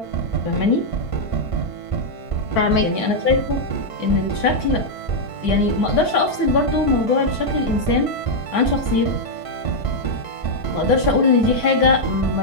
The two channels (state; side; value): late; right; 4.5 ms